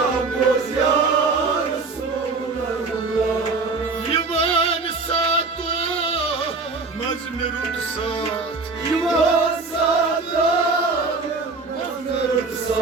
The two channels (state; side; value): quieter; left; 4.0 dB